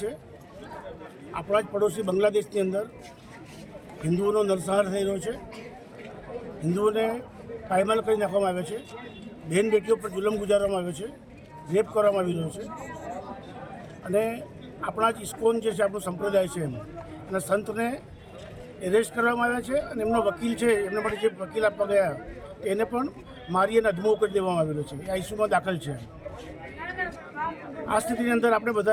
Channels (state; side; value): identical; both; correlation 1.00